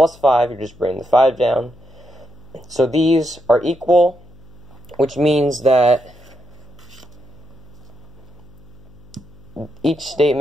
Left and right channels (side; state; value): left; noise; hum, 26 dB below the sound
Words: 5, you're just bringing the 5 down. So these are equal, which means that each